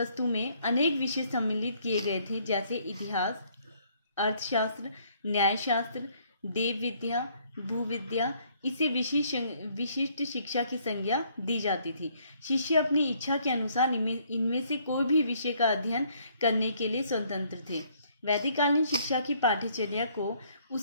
में अनेक विषय सम्मिलित किए गए थे, जैसे इतिहास, अर्थशास्त्र, न्यायशास्त्र, देव विद्या, भूविद्या। इसे विशिष्ट शिक्षा की संज्ञा दी जाती थी। शिष्य अपनी इच्छा के अनुसार इनमें से कोई भी विषय का अध्ययन करने के लिए स्वतंत्र थे। वैदिक कालीन शिक्षा की पाठ्यचर्या को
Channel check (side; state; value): both; inverted; correlation -0.65